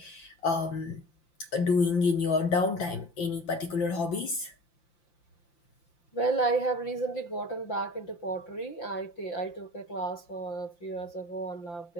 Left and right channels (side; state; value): right; late; 5.8 ms